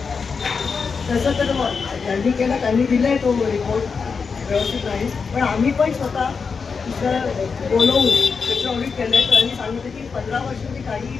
तसं तर त्यांनी केलं, त्यांनी दिलाय तो रिपोर्ट व्यवस्थित नाही. पण आम्ही पण स्वतः बोलवून त्याचं ऑडिट केलं आहे. त्यांनी सांगितलं की 15 वर्षांनी काहीही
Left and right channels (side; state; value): right; quieter; 5.3 dB